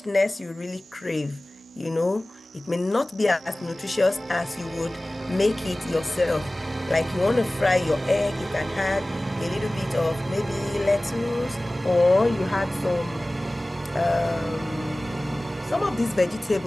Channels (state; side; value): normal; both; correlation 0.98